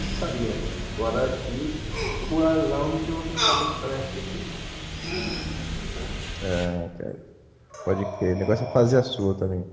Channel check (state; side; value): identical; both; correlation 1.00